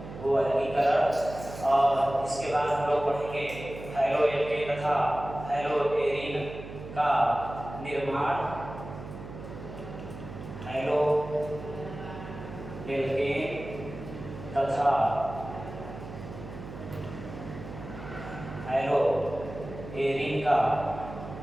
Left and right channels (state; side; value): noise; right; hum, 12 dB below the sound